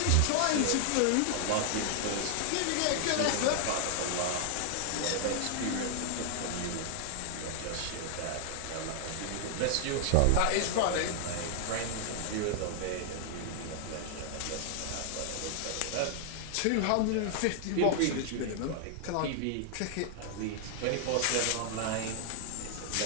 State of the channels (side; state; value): both; different; correlation 0.00